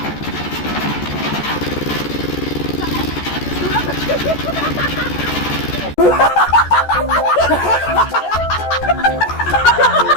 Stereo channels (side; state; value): right; late; 14 ms